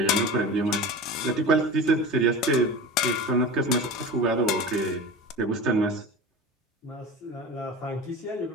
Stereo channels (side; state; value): both; normal; correlation 0.32